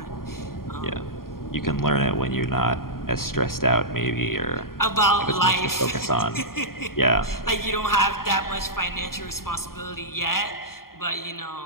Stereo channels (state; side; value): late; right; 0.92 ms